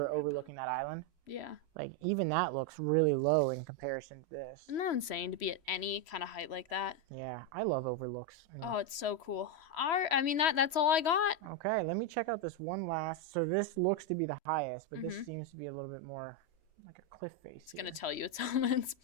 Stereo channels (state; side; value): late; right; 3.1 ms